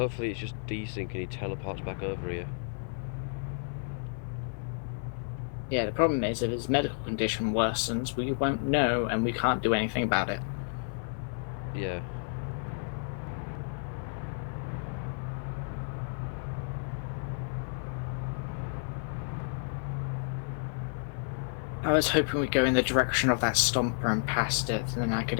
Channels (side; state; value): right; silent; 57 dB below the other